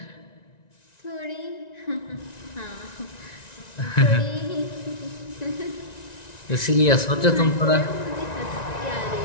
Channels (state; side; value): late; right; 1.9 ms